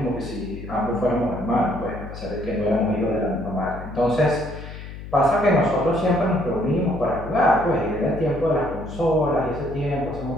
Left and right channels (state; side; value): noise; left; hum, 12 dB below the sound